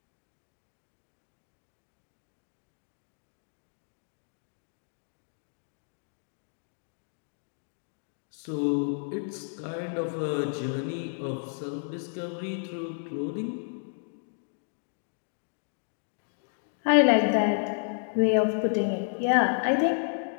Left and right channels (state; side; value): silent; right; digital silence